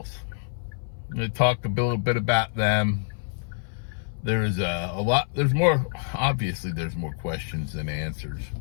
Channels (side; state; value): right; silent; 57 dB below the other